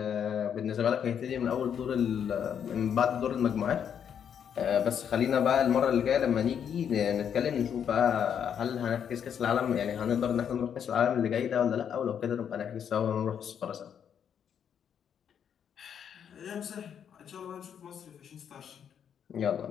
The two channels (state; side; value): quieter; right; 8.3 dB